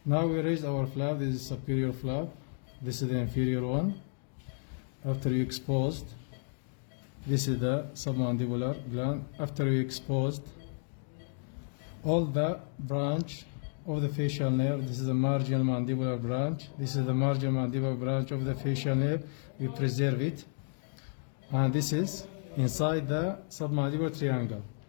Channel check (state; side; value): silent; right; 56 dB below the other